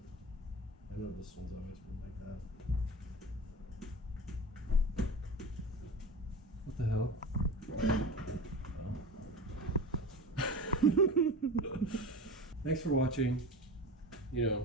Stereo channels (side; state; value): both; normal; correlation 0.30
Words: I know this one's always been like that. What the hell? Oh. Thanks for watching. You